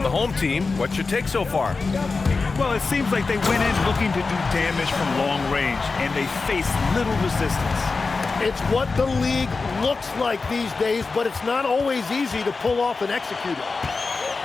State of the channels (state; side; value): quieter; right; 4.2 dB